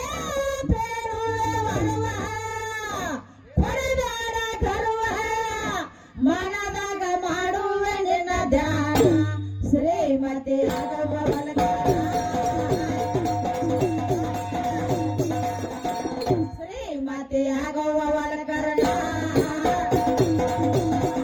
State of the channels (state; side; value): identical; both; correlation 1.00